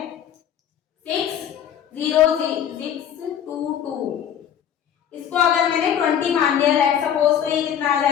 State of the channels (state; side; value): quieter; right; 9.3 dB